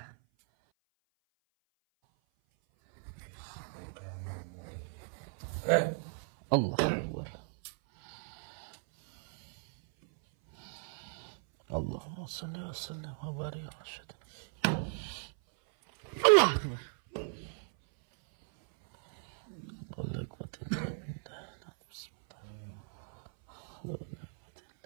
Allah Akbar. Allahumma shalli wa sallim wa barik ala sayyidina. Allah Akbar.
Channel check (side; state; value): left; silent; 54 dB below the other